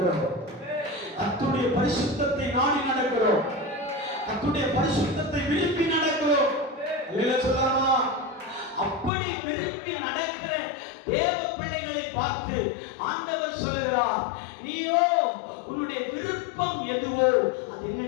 கர்த்தருடைய பரிசுத்தத்தை நாடி நடக்கிறோம். கர்த்தருடைய பரிசுத்தத்தை விரும்பி நடக்கிறோம். அல்லேலூயா சொல்லலாமா? அப்படி விரும்பி நடக்கிற தேவ பிள்ளைகளை பார்த்து ஆண்டவர் சொல்கிறார், நீயோ உன்னுடைய விருப்பம் எதுவோ அது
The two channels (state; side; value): drops out; right; at 9.1 s